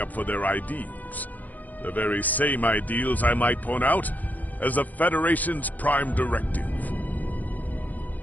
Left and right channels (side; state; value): right; late; 0.080 ms